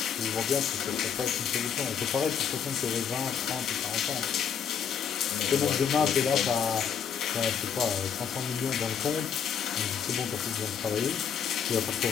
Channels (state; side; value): quieter; right; 7.7 dB